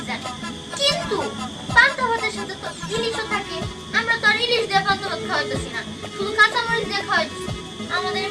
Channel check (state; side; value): identical; both; correlation 1.00